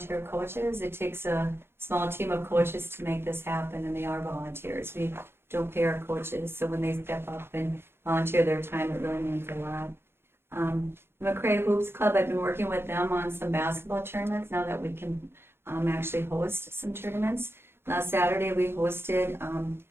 coaches. It takes a small team of coaches to make this happen, and they are volunteers. We don't pay our coaches, so when they step up and volunteer their time, it really means a lot. The McCray Hoops Club, I've been working with them on some basketball tournaments now that we can actually host some tournaments. Last Saturday, we hosted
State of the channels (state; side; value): late; left; 0.11 ms